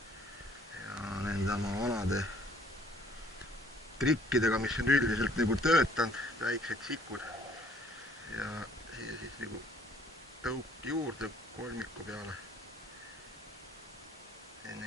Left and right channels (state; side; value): normal; both; correlation 0.58